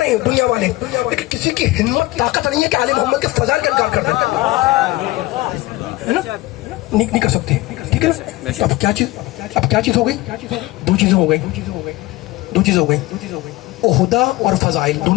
ہیں دنیا والے, لیکن کسی کی ہمت طاقت نہیں ہے کہ آل محمد کے فضائل کا انکار کر دیں, ہے نا. نہیں کر سکتے, ٹھیک ہے نا. اب کیا چیز ہو گئی, دو چیزیں ہو گئی. عہدہ اور فضائل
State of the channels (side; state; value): right; quieter; 19.2 dB